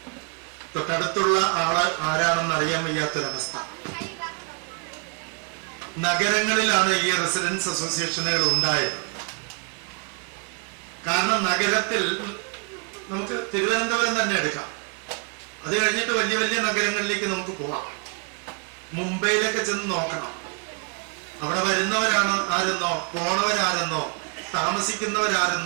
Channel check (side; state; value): left; quieter; 39.4 dB